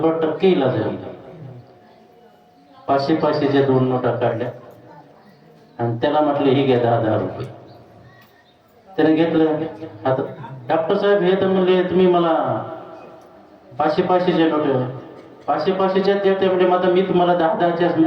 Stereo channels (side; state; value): both; identical; correlation 1.00